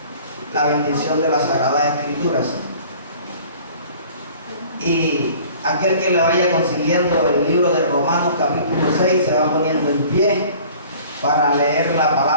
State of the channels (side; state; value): both; inverted; correlation -0.49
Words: la bendición de las Sagradas Escrituras. Y aquel que le vaya consiguiendo el libro de Romanos capítulo 6 se va poniendo en pie para leer la